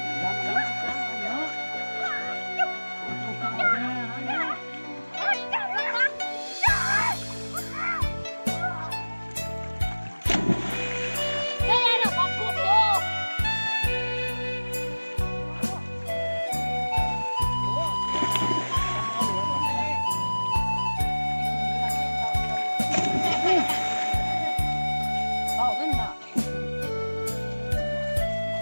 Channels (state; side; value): inverted; both; correlation -1.00